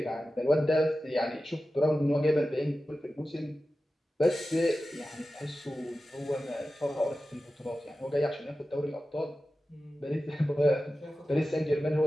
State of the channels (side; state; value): both; normal; correlation 0.94